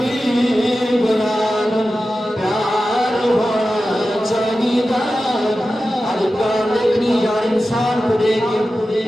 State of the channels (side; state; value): both; normal; correlation 0.93